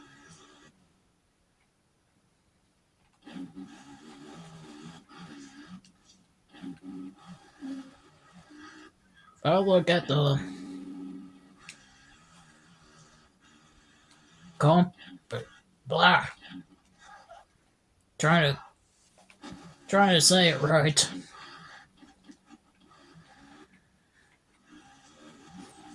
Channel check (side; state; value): both; identical; correlation 1.00